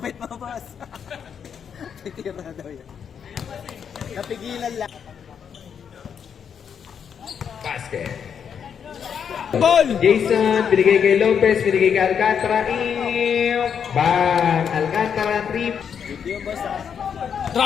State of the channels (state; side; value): quieter; right; 7.5 dB